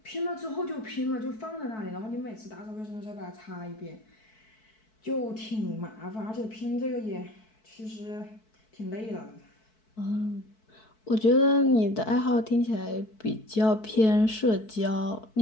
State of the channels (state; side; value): late; right; 4.6 ms